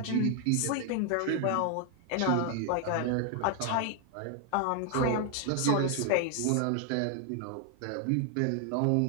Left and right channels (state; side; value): different; both; correlation 0.00